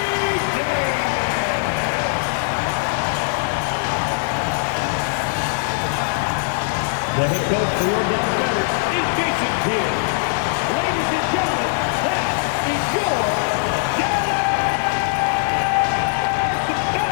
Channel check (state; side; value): silent; right; 59 dB below the other